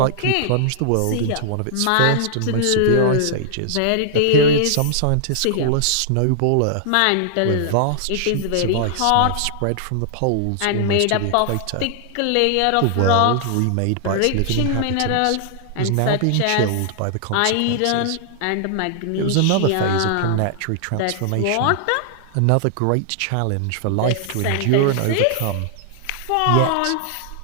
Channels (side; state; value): both; different; correlation -0.01